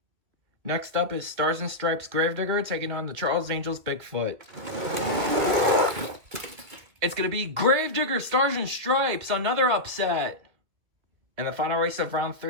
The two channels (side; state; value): left; late; 2.5 ms